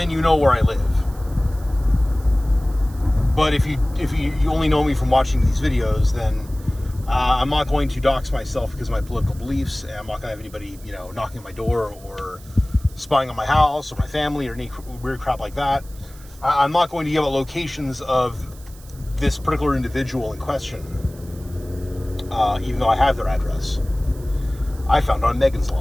you know where I live. But if you only know me from watching these videos, then I'm not going to dox myself because of my political beliefs, and I'm not going to have anybody, knocking at my door or spying on my house or my family or any weird crap like that. I'm not going to give out locations of this particular individual in question. Even though I have their address. I found on Megan's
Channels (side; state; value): right; noise; hiss, 23 dB below the sound